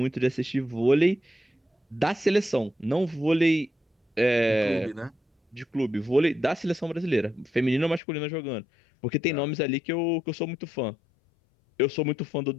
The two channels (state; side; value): drops out; right; at 8.0 s